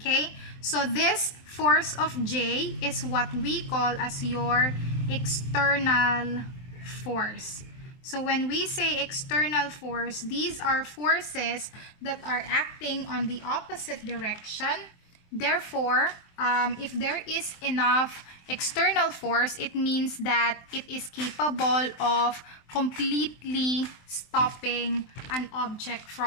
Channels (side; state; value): right; late; 23 ms